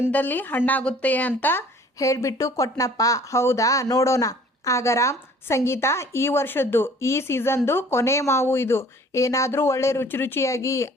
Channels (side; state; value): both; normal; correlation 0.52